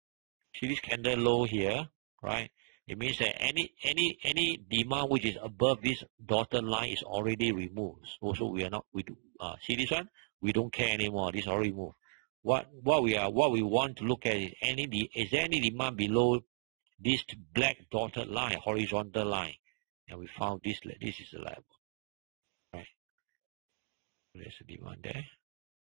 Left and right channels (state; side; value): silent; left; digital silence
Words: See this candle low here, right? It means that any demand which is above this dotted line is already removed. Also, see this one? We don't care anymore. This is already removed. What we want to look at is is there any demand below this black dotted line, horizontal line? And we found this is the level. Right. There's a demand there.